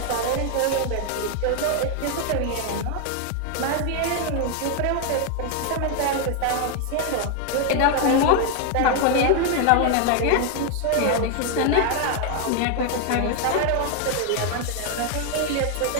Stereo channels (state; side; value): different; both; correlation 0.01